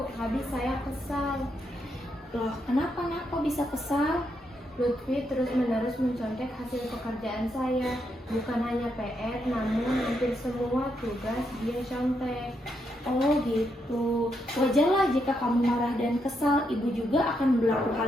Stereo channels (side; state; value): both; normal; correlation 0.80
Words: habis saya kesal. Loh, kenapa nak kok bisa kesal? Lutfi terus-menerus mencontek hasil pekerjaan saya. Bukan hanya PR, namun hampir semua tugas dia contek. Oh gitu. Wajarlah jika kamu marah dan kesal. Ibu juga akan berlaku